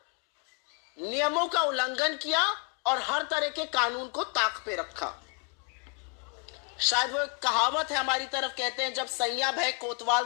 नियमों का उल्लंघन किया और हर तरह के कानून को ताक पे रखा। शायद वो एक कहावत है हमारी तरफ, कहते हैं जब सैया भय कोतवाल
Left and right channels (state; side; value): quieter; right; 36.2 dB